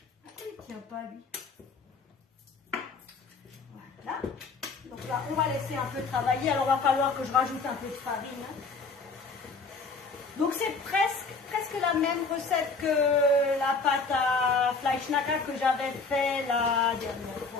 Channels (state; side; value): quieter; right; 4.2 dB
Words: Pourquoi il ne tient pas, lui? Voilà. Donc là, on va laisser un peu travailler. Alors, il va falloir que je rajoute un peu de farine. Donc, c'est presque la même recette que la pâte à Fleischknacker que j'avais fait la dernière